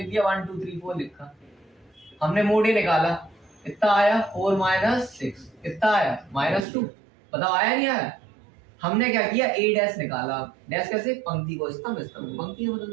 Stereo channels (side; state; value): left; drops out; at 6.7 s